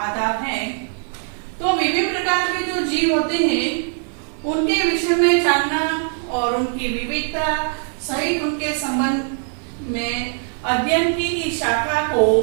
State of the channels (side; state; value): left; silent; 58 dB below the other